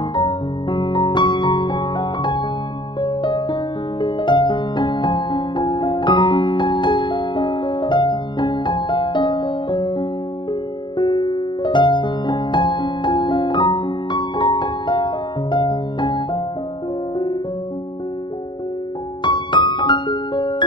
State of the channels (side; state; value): right; late; 0.23 ms